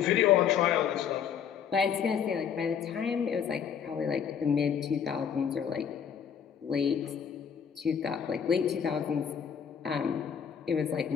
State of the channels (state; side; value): quieter; right; 7.8 dB